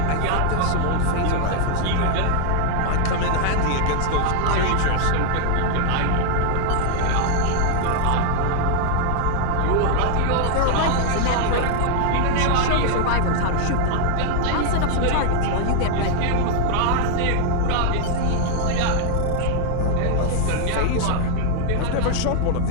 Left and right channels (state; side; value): different; both; correlation 0.00